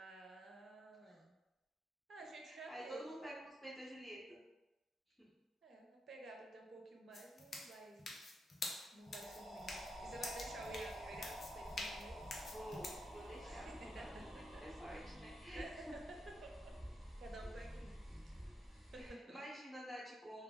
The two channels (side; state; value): both; normal; correlation 0.82